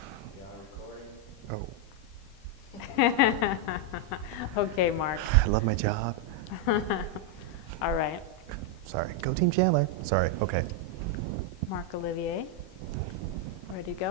beyond recording. Okay, Mark. I love my job. All right. Sorry. Go Team Chandler. Sorry. Okay. Marc Olivier. Ready to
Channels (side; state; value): both; normal; correlation 0.01